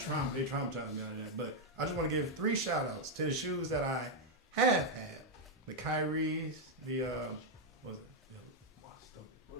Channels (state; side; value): normal; both; correlation 0.00